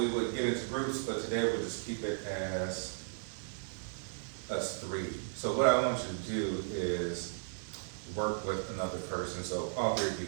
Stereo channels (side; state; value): left; silent; digital silence